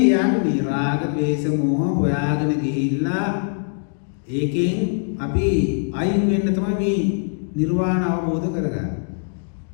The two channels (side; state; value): right; silent; digital silence